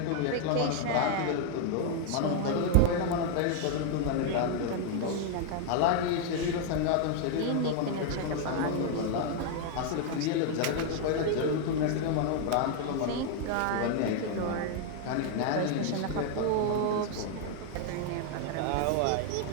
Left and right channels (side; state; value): both; different; correlation 0.00